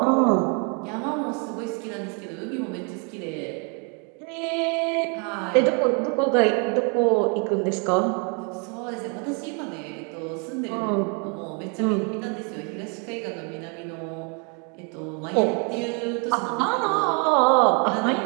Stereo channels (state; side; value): quieter; left; 36.3 dB